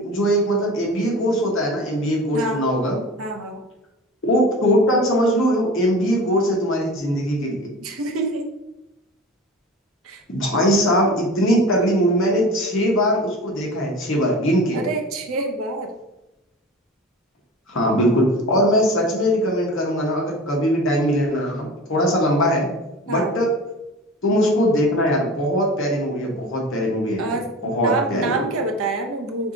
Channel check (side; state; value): both; normal; correlation 0.35